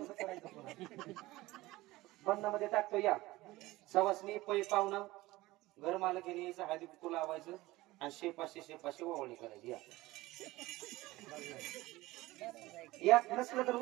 बंधामध्ये टाकतो. या सवासणी पै पाहुणं घर मालकीने यायचं, हळदी कुंकू लावायचं आणि शेपाशी ओवाळणी करायची. या नसलं तर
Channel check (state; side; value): quieter; left; 18.9 dB